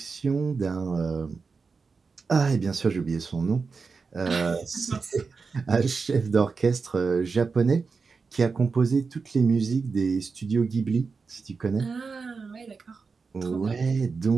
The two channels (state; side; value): quieter; left; 4.8 dB